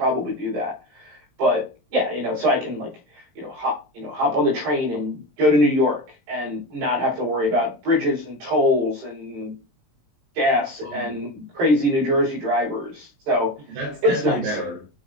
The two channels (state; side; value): late; left; 20 ms